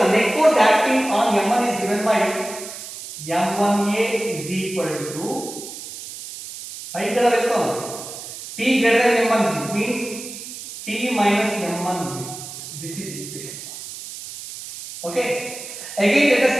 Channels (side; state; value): right; noise; hiss, 11 dB below the sound